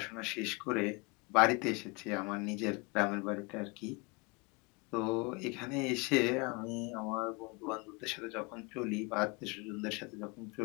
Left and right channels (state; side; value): quieter; right; 28.0 dB